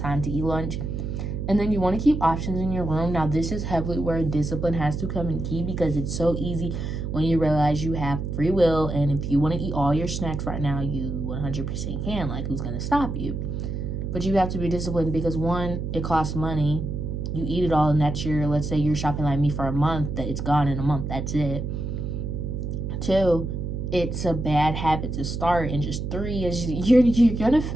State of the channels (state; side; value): noise; right; hum, 4 dB below the sound